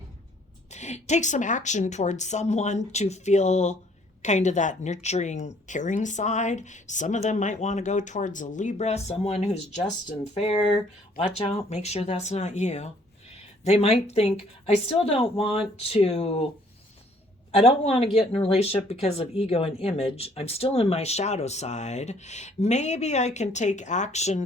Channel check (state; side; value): normal; both; correlation 0.61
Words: take some action towards someone to feel kind of that nurturing, caring side. Some of them might want to go towards a Libra, someone who's just and fair. Watch out, make sure that's not you. They might think, I don't want to get in a relationship because of ego and image. I'm still in my shadow side. Maybe I can take action